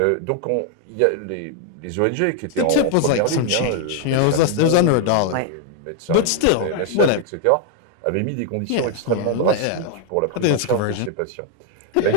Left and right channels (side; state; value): both; different; correlation 0.00